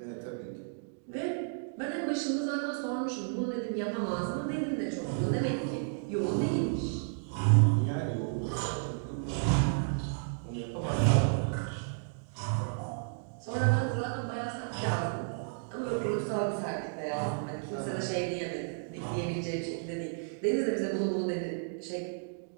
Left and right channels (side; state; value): left; silent; digital silence